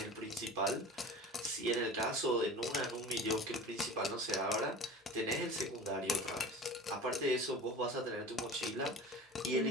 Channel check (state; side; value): normal; both; correlation 0.38